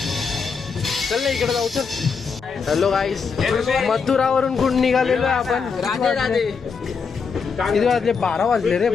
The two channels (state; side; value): quieter; right; 5.5 dB